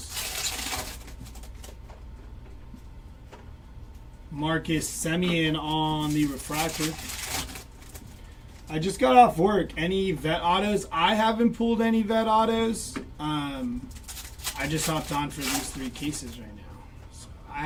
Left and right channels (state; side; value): identical; both; correlation 1.00